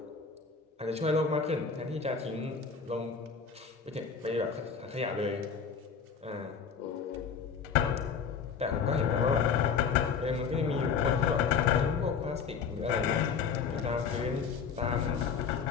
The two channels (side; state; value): right; quieter; 6.2 dB